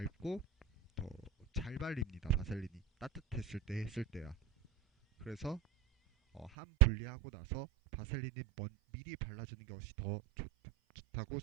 더 잘 발립니다. 바셀린이 따뜻했을 때 했을 때야. 그래서 한 분리하고 나서 바셀린이 미리 발라주는 것이 더 좋다고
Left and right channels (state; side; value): drops out; left; at 6.5 s